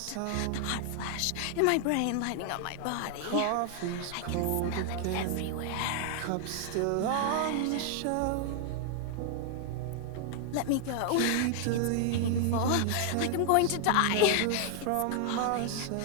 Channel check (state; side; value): different; both; correlation 0.00